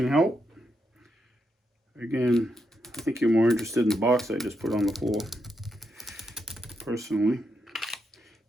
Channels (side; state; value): both; normal; correlation 0.83